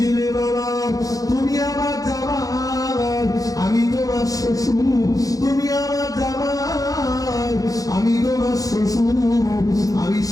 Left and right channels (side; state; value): right; late; 0.17 ms